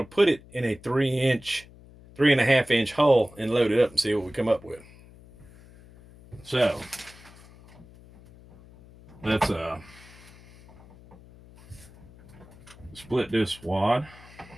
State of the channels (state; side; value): noise; left; hum, 22 dB below the sound